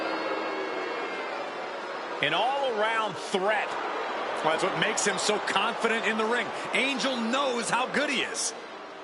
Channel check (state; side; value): identical; both; correlation 1.00